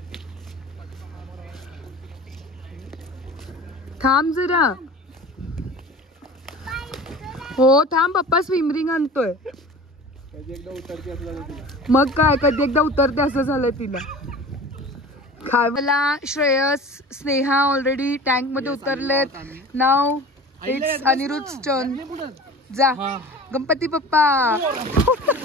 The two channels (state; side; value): normal; both; correlation 0.39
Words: थांब जरा. हो थांब, पप्पा स्विम रिंग आणतोय. मग काय, कधी एकदा उतरते असं झालंय तिला. काय मला श्रेयस, स्नेहा ऑलरेडी टँक मध्ये उतरलेत. नाव इट्स अनिरुद्ध टर्न. जा गणपती बाप्पा.